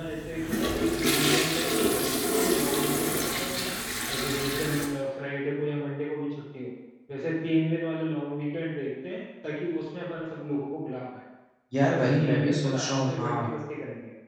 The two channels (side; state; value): both; identical; correlation 1.00